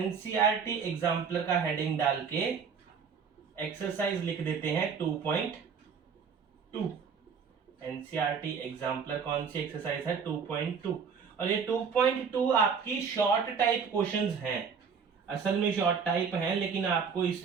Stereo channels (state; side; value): quieter; left; 6.2 dB